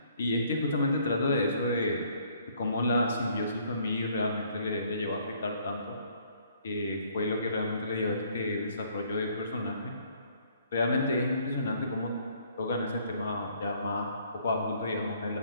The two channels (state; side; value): inverted; both; correlation -0.63